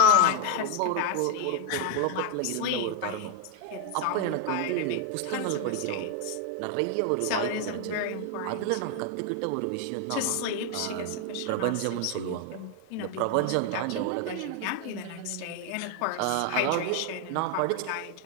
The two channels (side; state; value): both; different; correlation 0.01